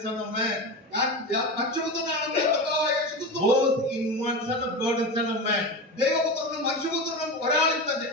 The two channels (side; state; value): both; normal; correlation 0.23